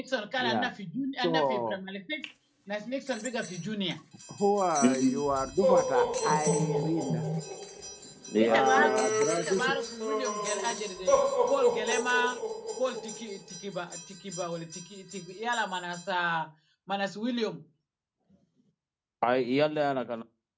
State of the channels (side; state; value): both; identical; correlation 1.00